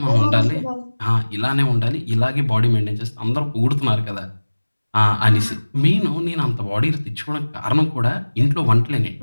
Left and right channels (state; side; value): inverted; both; correlation -1.00